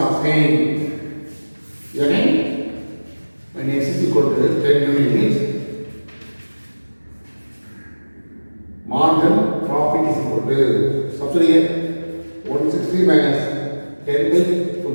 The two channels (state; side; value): inverted; both; correlation -1.00